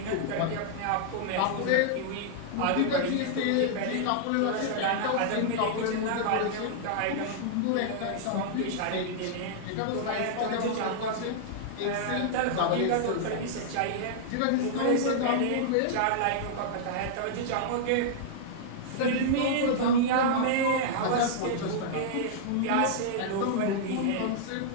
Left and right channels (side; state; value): both; different; correlation -0.01